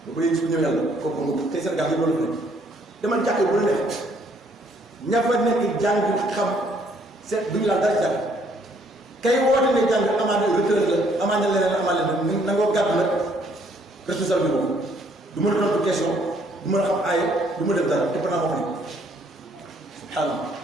ba ko yéegi su ñëw yàlla kooku nga tey Sénégal yi loolu fi nekk dama jàkk bu la nekk ña fa nekk jàng xam seet duñu laal dara jàng kay woote ne jàng amaana retraite la amaana leneen amaana leneen nangoo gàddu nag responsable bi boobu du mën a tontu question du mën a xam aaye du ma def dara te pendant moo fa nekk subhanallah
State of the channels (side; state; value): both; normal; correlation 0.66